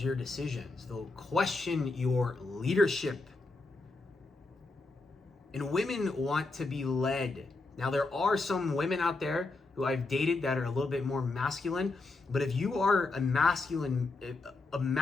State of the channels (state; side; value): quieter; right; 3.4 dB